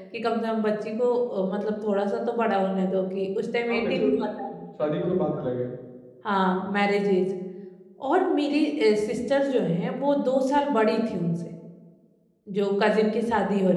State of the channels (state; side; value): identical; both; correlation 1.00